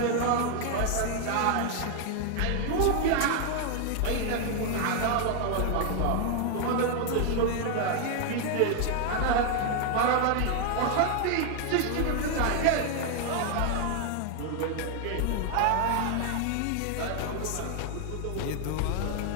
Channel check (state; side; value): different; both; correlation 0.00